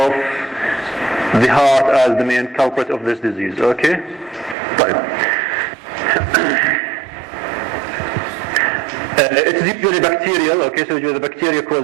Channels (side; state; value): left; drops out; at 4.5 s